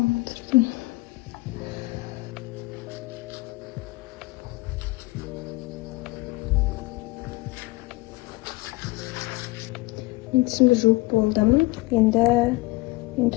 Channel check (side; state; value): right; quieter; 22.0 dB